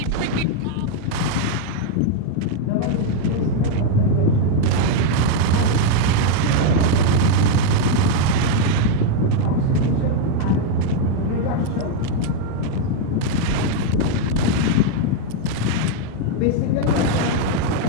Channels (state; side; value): different; both; correlation 0.00